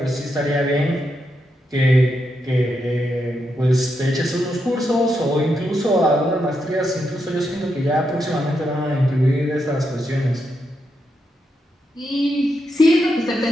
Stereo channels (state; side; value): normal; both; correlation 0.83